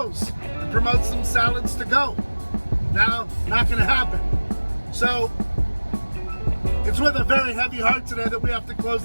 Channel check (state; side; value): inverted; both; correlation -1.00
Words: and promote some salads to go? Now, not going to happen. So, it's with a very heavy heart today that we have to close